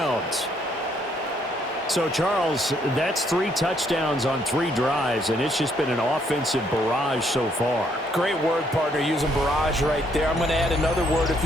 So, Charles, that's 3 touchdowns on 3 drives, and it's just been an offensive barrage so far. Great word, partner, using barrage right there. I'm going to add another word if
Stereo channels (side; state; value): both; normal; correlation 0.70